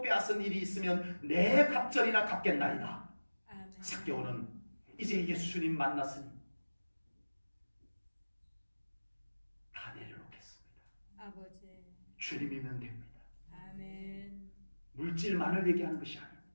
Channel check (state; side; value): inverted; both; correlation -1.00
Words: 빼앗은 일이 있으면 내 갑절이나 갚겠나이다. 아멘. 삭개오는 이제 예수님 만났으니 다 내려놓겠습니다. 아버지. 주님이면 됩니다. 아멘. 물질만을 얘기하는 것이